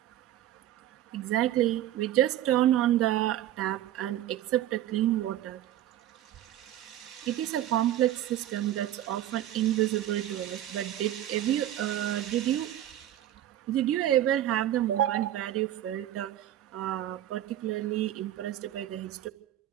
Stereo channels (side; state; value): left; quieter; 12.7 dB